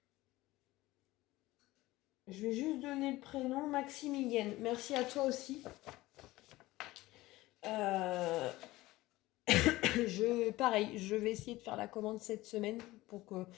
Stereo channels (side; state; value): right; quieter; 18.5 dB